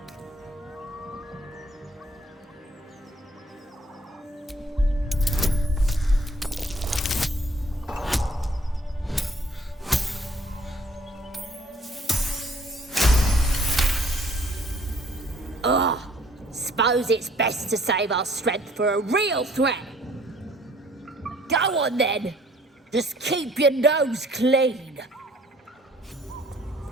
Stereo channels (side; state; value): both; normal; correlation 0.59